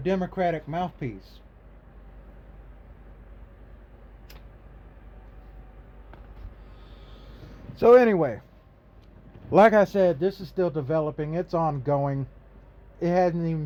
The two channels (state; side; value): identical; both; correlation 1.00